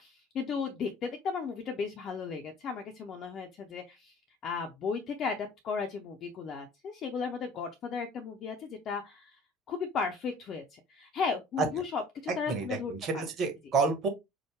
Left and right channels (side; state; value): both; normal; correlation 0.48